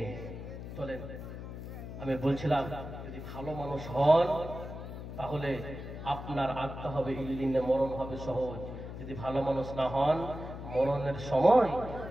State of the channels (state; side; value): noise; left; hum, 9 dB below the sound